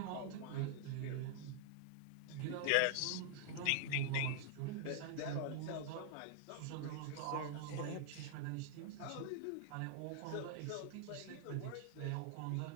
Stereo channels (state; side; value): different; both; correlation -0.01